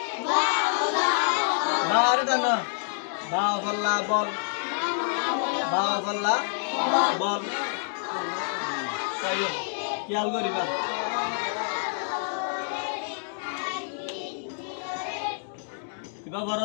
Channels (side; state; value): right; silent; digital silence